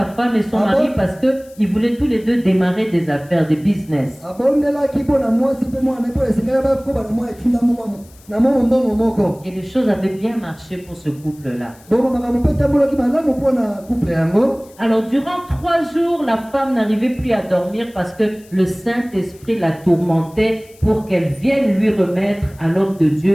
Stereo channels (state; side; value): noise; left; hiss, 26 dB below the sound